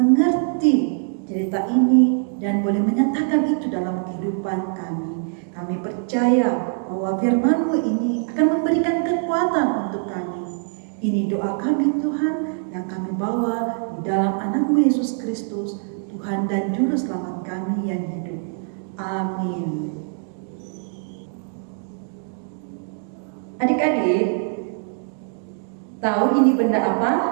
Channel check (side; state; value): left; silent; 59 dB below the other